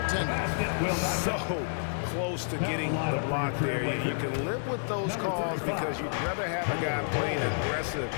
So close to getting the block there. You can live with those calls because you'd rather have a guy playing aggressive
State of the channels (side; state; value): right; silent; digital silence